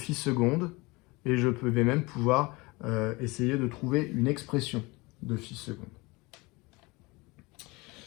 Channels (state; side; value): quieter; right; 24.2 dB